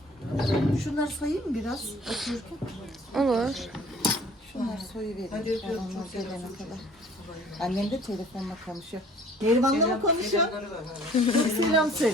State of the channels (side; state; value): both; normal; correlation 0.52